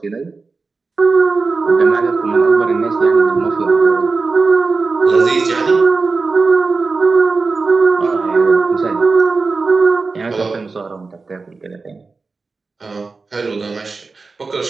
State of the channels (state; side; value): quieter; left; 4.1 dB